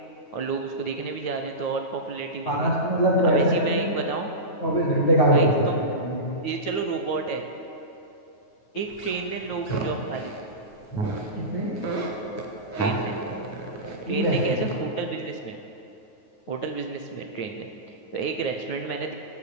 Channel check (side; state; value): right; late; 9.4 ms